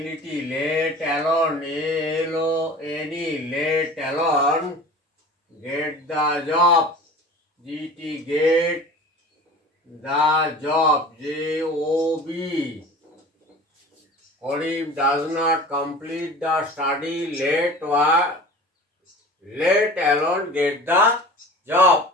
let alone ALONE let alone get the job GT get the job JOB। Karim does not complete the study let alone get the job.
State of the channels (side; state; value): both; normal; correlation 0.39